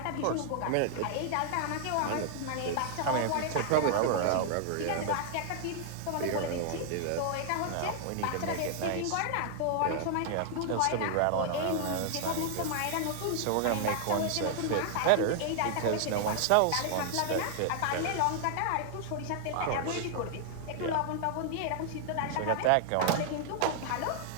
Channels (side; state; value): both; different; correlation 0.00